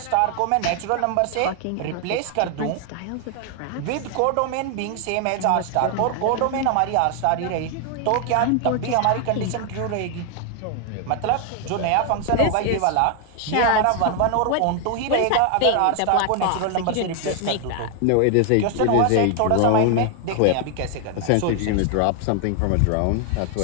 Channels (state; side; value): different; both; correlation 0.00